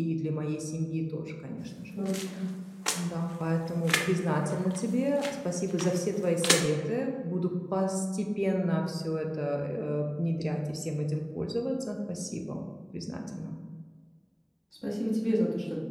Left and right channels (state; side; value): identical; both; correlation 1.00